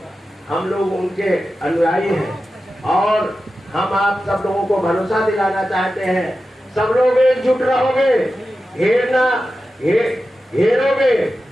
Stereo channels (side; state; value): both; normal; correlation 0.92